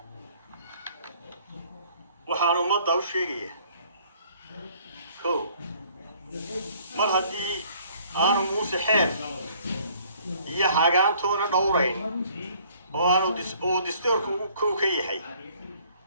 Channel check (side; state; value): both; inverted; correlation -0.59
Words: waxaan ummadda u sheegayaa mar haddii aanu Muuse xeer iyo hagaantoona dhowrayn oo aanu dastuurku kow ka yahay